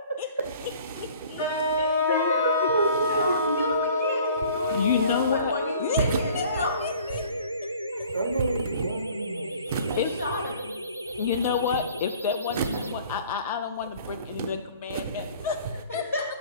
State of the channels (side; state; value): both; inverted; correlation -0.52